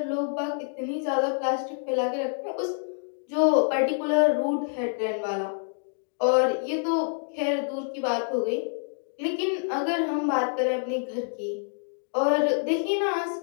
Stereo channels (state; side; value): silent; right; digital silence